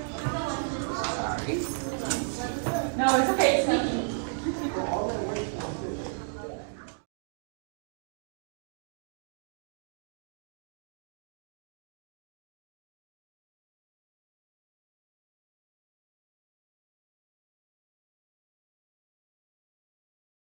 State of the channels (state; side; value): silent; left; digital silence